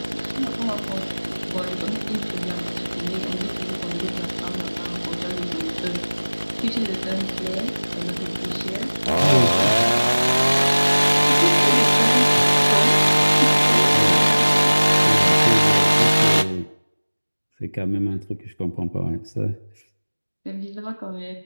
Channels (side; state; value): both; inverted; correlation -1.00